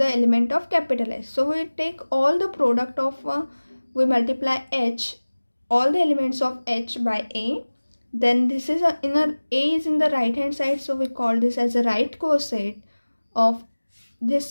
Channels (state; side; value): inverted; both; correlation -1.00